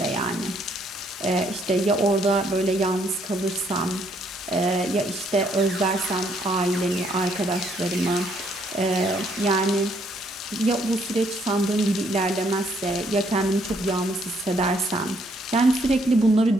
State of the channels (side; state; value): both; normal; correlation 0.69